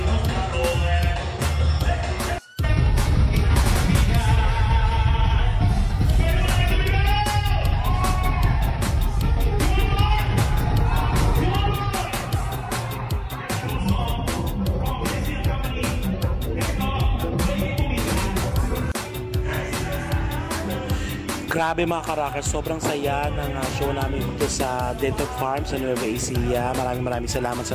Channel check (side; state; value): both; identical; correlation 1.00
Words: Grabe mga karakers, sobrang saya ng show namin dito sa Dental Farm sa Nueva Ecija. Maraming salamat sa